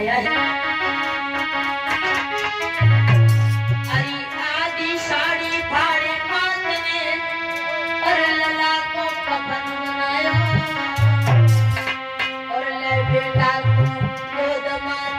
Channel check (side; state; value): both; identical; correlation 1.00